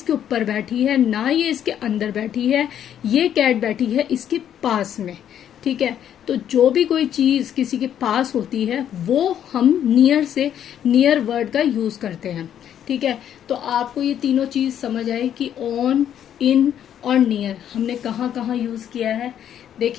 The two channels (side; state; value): right; quieter; 9.9 dB